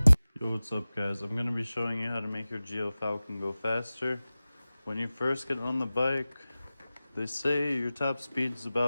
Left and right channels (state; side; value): inverted; both; correlation -0.96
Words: Yo, what's up guys? I'm going to be showing you how to make your Falcon go faster. When you first get on the bike, they say your top speed is